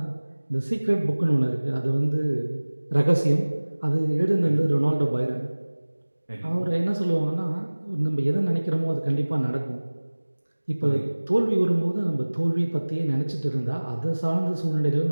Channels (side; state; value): both; inverted; correlation -1.00